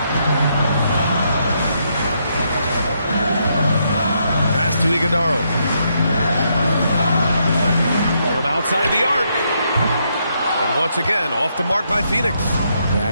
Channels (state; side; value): inverted; both; correlation -0.77